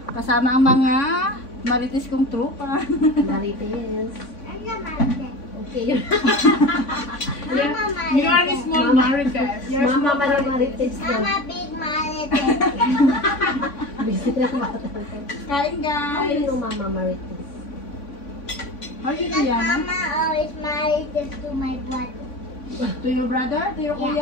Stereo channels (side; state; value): right; late; 3.5 ms